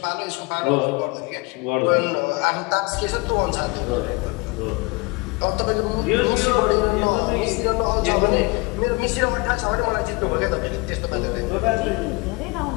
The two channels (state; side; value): quieter; right; 25.6 dB